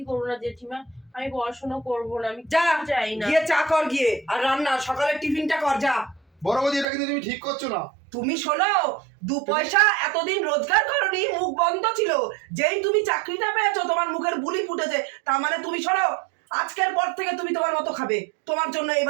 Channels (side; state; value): left; drops out; at 6.9 s